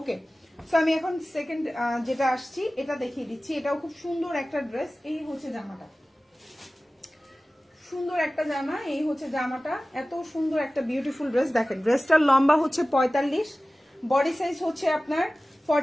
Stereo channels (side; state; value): both; normal; correlation 0.97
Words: সো আমি এখন সেকেন্ড যেটা আসছি এটা দেখিয়ে দিচ্ছি। এটাও খুব সুন্দর একটা ড্রেস। এই হচ্ছে জামাটা, সুন্দর একটা জামা। এই হচ্ছে জামাটা, এত সুন্দর একটা বিউটিফুল ড্রেস। দেখেন ড্রেসটার লম্বা হচ্ছে 45, বডি সাইজ হচ্ছে আপনার